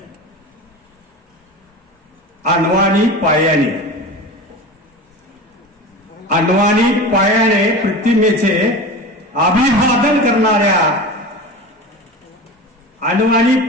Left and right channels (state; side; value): normal; both; correlation 0.31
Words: अण्वानी पायाने, अण्वानी पायाने प्रतिमेचे अभिवादन करणाऱ्या, अण्वानी